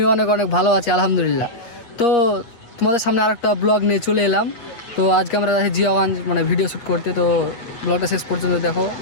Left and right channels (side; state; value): right; late; 8.4 ms